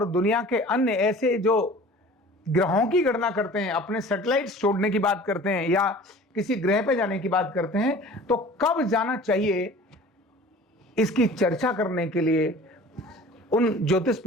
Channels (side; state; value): both; normal; correlation 0.44